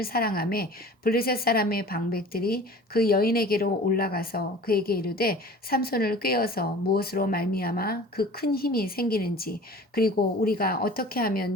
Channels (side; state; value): both; normal; correlation 0.43